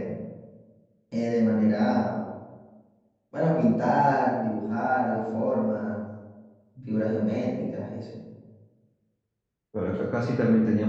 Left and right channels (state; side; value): identical; both; correlation 1.00